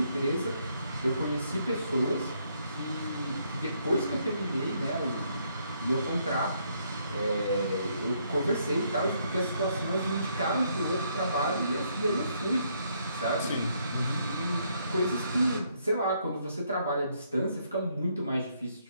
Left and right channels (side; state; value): both; inverted; correlation -0.72